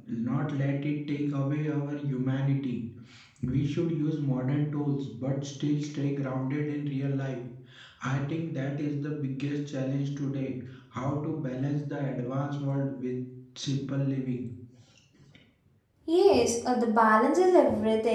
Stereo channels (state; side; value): identical; both; correlation 1.00